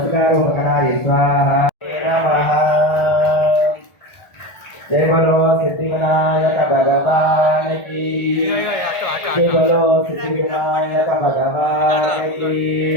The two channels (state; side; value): late; right; 1.4 ms